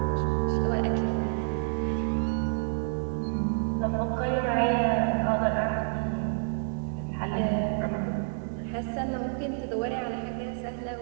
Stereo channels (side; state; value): left; silent; digital silence